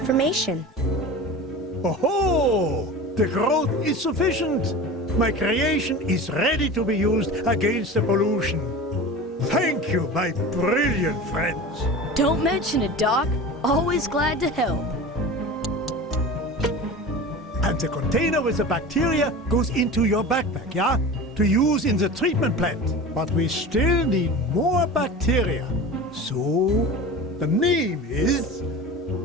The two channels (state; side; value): normal; both; correlation 0.33